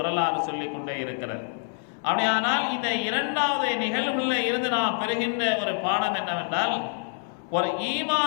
சொல்லிக் கொண்டே இருக்கிறது. அப்படியானால் இந்த இரண்டாவது நிகழ்வுல இருந்து நாம் பெறுகின்ற ஒரு பாடம் என்னவென்றால், ஒரு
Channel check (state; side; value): silent; right; 61 dB below the other